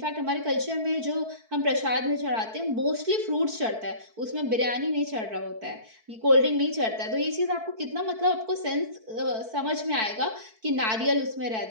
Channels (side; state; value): left; late; 4.5 ms